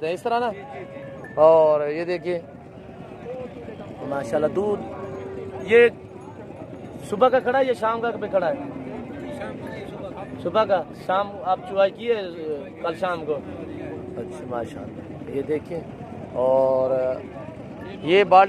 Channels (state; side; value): identical; both; correlation 1.00